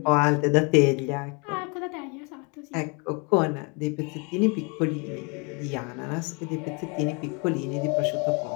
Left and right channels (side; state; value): right; quieter; 32.6 dB